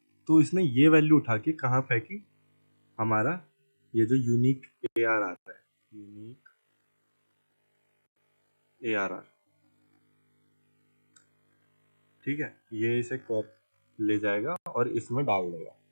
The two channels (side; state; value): both; inverted; correlation -1.00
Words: तो इसने ये वैल्यू उठा के कहाँ फेंकी, हमारा ये जो यूनिक ARR आता है, यूनिक ARR, ठीक है, ये इसे कॉप ले जाएगा और इसमें डाल देगा।